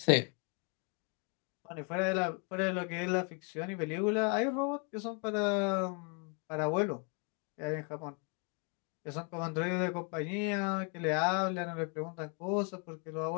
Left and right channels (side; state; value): right; quieter; 37.4 dB